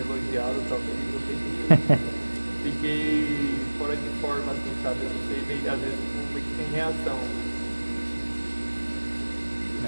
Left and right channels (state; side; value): inverted; both; correlation -1.00